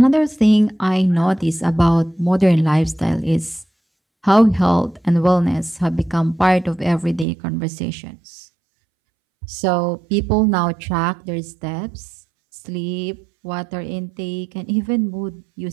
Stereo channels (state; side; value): drops out; left; at 7.2 s